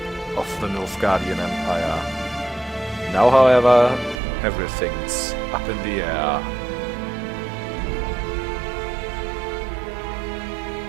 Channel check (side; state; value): left; drops out; at 4.2 s